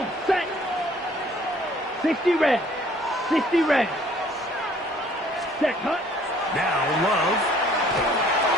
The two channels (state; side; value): normal; both; correlation 0.58